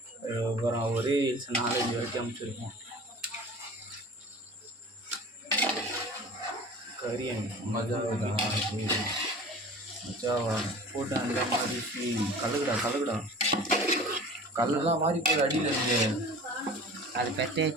அப்புறம் ஒரே ரீல்ஸ் 4-5 வரைக்கும் அனுப்பிச்சிருக்கோம். கரியன் மஜாவா மஜாவா போட்டு அந்த மாதிரி கலகுடா கலகுடா. கல்லெல்லாம் மாறி போய் அடியில் இருந்து அது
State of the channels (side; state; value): both; normal; correlation 0.41